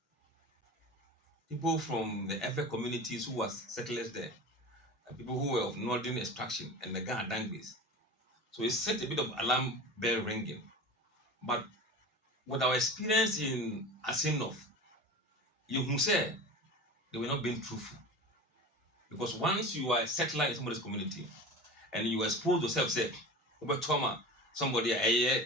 People from the Efe communities who were settlers there, and people who were of northern extraction and the Ghana Dangbis. So it set a bit of alarm bell ringing. But with our experience in Asinov, you who say they were not being truthful. Because once you are a settler in somebody's community and you expose yourself, say, over trauma, somebody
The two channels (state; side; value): normal; both; correlation 0.33